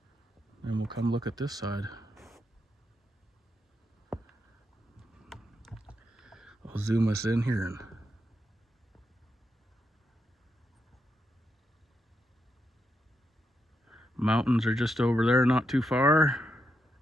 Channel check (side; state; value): both; normal; correlation 0.83